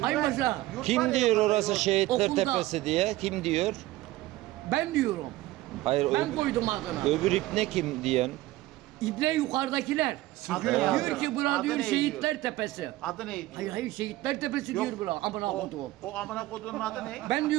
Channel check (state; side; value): quieter; left; 17.2 dB